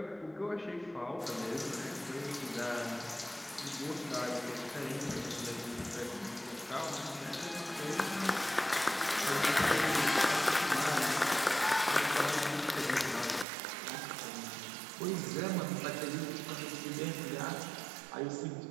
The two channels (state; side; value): drops out; left; at 13.5 s